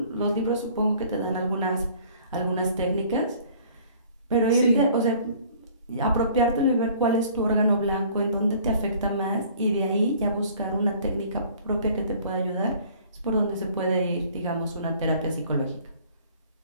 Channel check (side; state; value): both; inverted; correlation -0.53